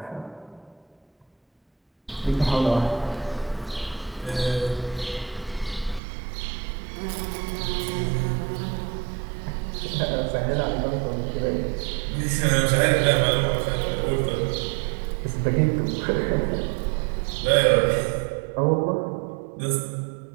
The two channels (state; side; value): drops out; left; at 6.0 s